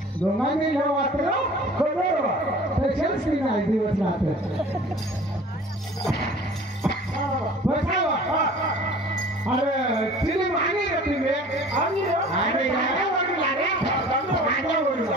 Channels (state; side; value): normal; both; correlation 0.46